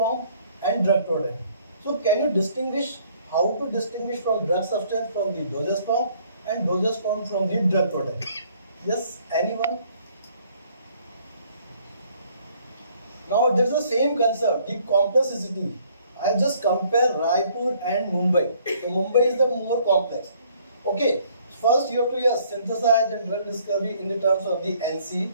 and drug product. So can you distinguish how to distinguish from drug substance from the dosage form and dosage form from the drug product? Yes, anyone? Now there's the same concept, the complexity. I just compare Raipur and Mumbai. So Mumbai is the more complex. Okay, first you have to synthesize and drug discovery in the terms of the NC,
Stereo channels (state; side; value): inverted; both; correlation -0.62